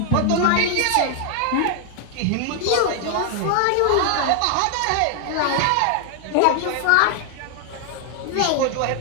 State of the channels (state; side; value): different; both; correlation 0.00